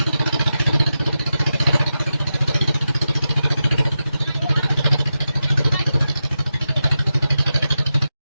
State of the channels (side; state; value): both; inverted; correlation -0.90